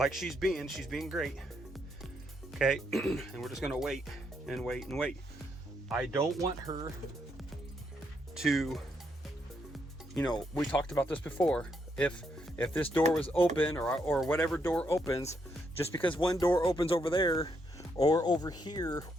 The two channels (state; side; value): normal; both; correlation 0.76